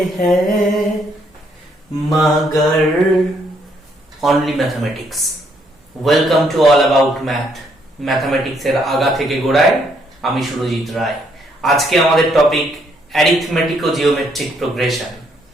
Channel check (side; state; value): both; normal; correlation 0.71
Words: हैं मगर only mathematics. Welcome to all about math. ম্যাথমেটিক্সের আগা থেকে গোড়ায় আমি সুরজিৎ রায়। আজকে আমাদের টপিক অ্যারিথমেটিক ও জিওমেট্রিক প্রোগ্রেশন।